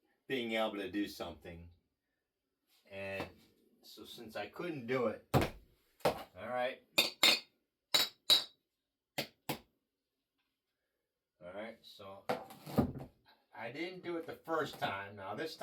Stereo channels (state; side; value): identical; both; correlation 1.00